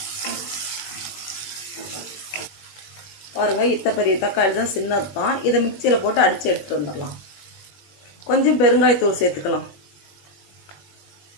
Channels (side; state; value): right; late; 21 ms